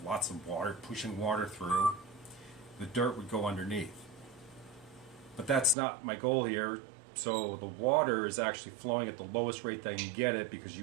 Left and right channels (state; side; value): drops out; left; at 5.8 s